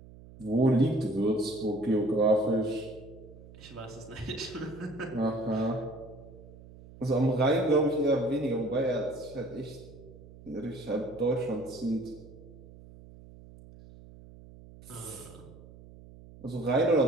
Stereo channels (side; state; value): right; noise; hum, 19 dB below the sound